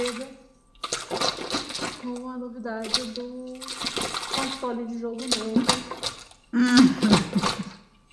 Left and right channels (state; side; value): identical; both; correlation 1.00